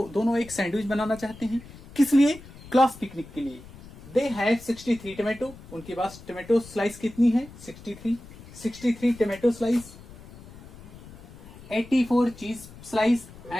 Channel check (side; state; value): left; noise; rumble, 18 dB below the sound